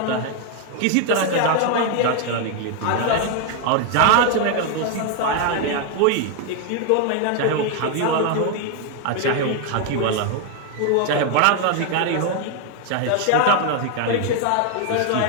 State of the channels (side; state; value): both; different; correlation 0.01